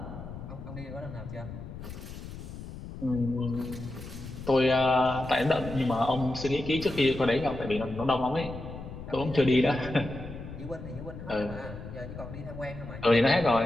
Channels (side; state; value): left; noise; rumble, 11 dB below the sound